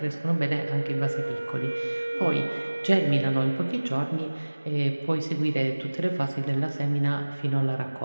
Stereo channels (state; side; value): inverted; both; correlation -1.00